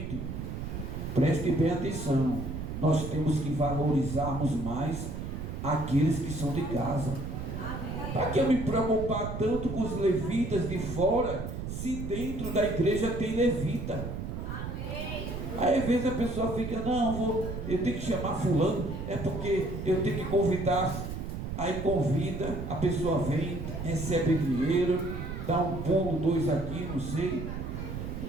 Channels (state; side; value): noise; right; rumble, 6 dB below the sound